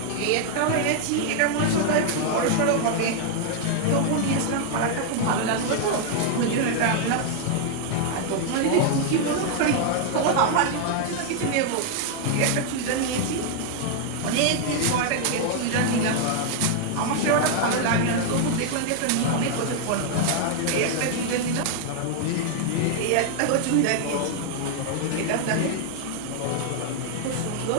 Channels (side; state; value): both; different; correlation 0.00